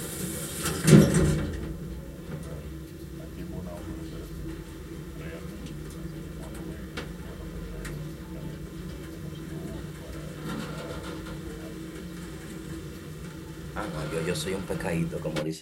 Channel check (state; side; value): identical; both; correlation 1.00